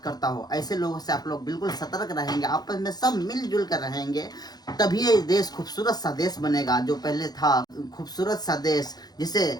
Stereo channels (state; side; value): late; right; 0.19 ms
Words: करता हो। ऐसे लोगों से आप लोग बिल्कुल सतर्क रहेंगे, आपस में सब मिलजुल कर रहेंगे, तभी ये देश खूबसूरत सा देश बनेगा जो पहले था, खूबसूरत सा देश जिसे